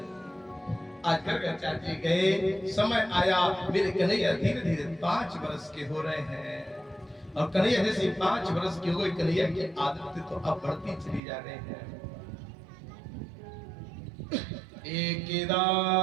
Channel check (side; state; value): left; drops out; at 11.2 s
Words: आज कर चाची गए, समय आया, मेरे कन्हैया धीरे धीरे 5 वर्ष के हो रहे हैं। और कन्हैया जैसे 5 वर्ष के हो गए, कन्हैया की आदत तो अब बढ़ती चली जा रही है।